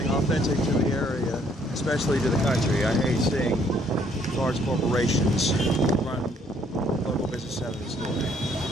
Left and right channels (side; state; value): both; normal; correlation 0.65